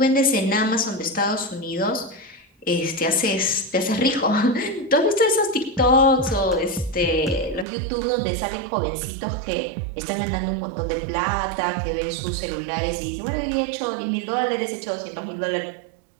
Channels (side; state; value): left; drops out; at 7.7 s